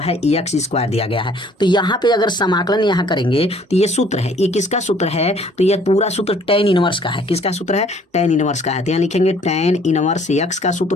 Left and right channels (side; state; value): both; normal; correlation 0.58